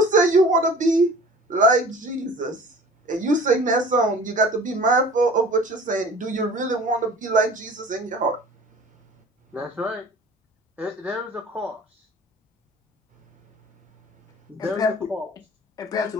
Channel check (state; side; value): normal; both; correlation 0.44